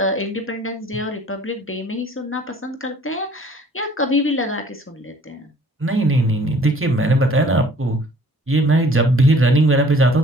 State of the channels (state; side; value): normal; both; correlation 0.54